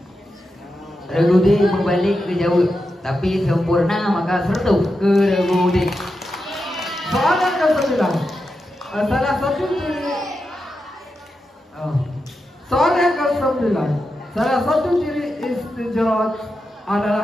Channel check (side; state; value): both; normal; correlation 0.88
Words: Regude membalik ke jauh, tapi sempurna maka sertu ke Regude. Soalan ke-9. Salah satu ciri Soalan ke-9. Salah satu ciri istijrat